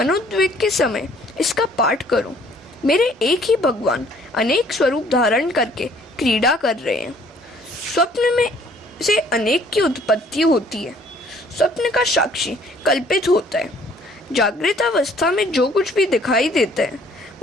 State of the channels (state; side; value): normal; both; correlation 0.59